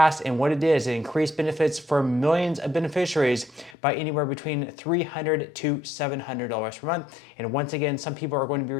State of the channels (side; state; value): right; drops out; at 3.8 s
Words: and what it did is it increased benefits for millions of beneficiaries by anywhere between $300 to $700 per month. And once again, some people are going to be